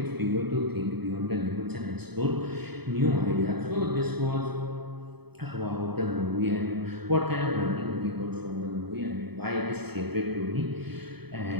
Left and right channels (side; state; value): left; late; 0.98 ms